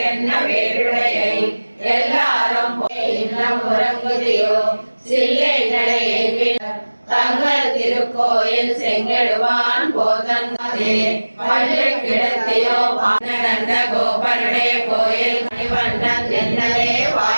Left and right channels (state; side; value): inverted; both; correlation -1.00